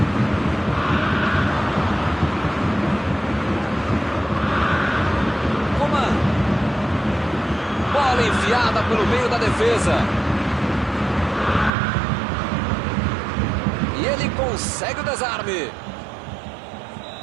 Coman. Bola enfiada pelo meio da defesa. E ele consegue o desarme.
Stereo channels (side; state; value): left; drops out; at 11.7 s